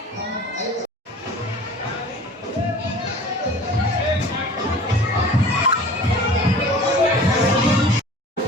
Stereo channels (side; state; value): both; normal; correlation 0.43